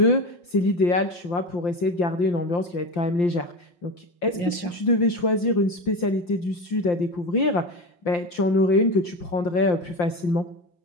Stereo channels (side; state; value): right; late; 5.8 ms